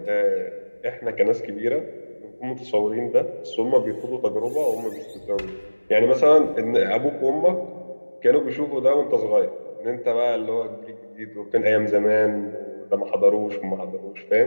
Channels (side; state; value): both; inverted; correlation -1.00